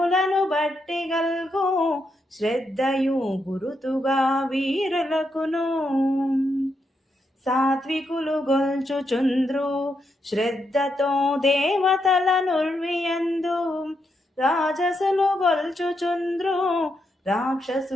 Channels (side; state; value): both; normal; correlation 0.82